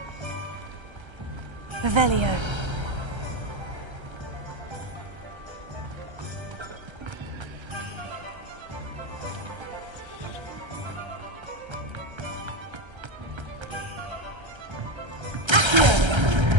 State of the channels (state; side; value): late; left; 1.3 ms